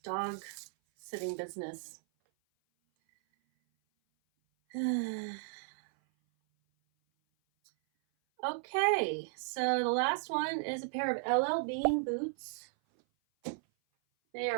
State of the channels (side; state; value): left; silent; 55 dB below the other